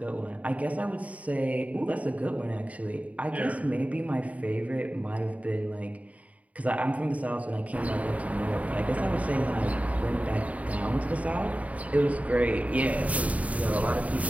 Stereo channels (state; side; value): late; left; 0.069 ms